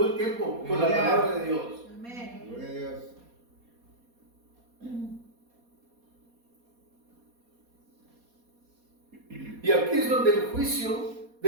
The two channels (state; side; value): late; left; 4.2 ms